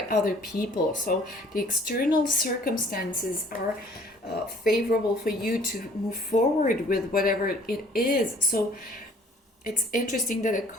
other people. So the external circumstances are favorable for you to move forward with whatever it is. So it's interesting that the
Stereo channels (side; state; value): both; normal; correlation 0.55